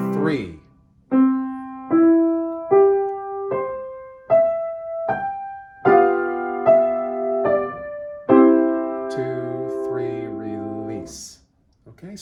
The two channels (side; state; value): both; identical; correlation 1.00